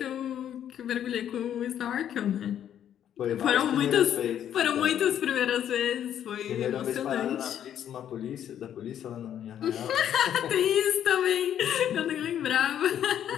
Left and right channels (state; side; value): quieter; right; 10.1 dB